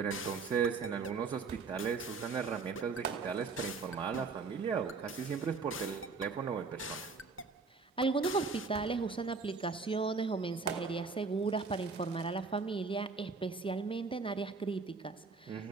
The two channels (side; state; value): left; quieter; 4.6 dB